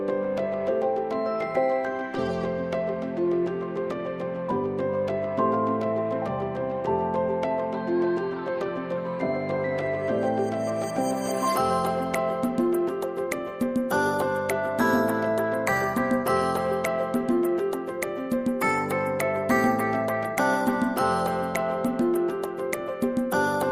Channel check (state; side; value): identical; both; correlation 1.00